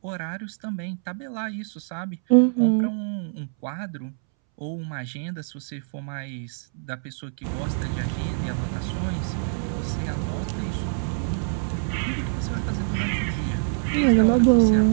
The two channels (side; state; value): left; silent; 62 dB below the other